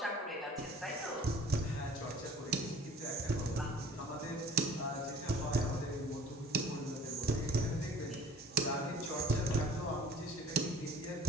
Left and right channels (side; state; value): both; normal; correlation 0.49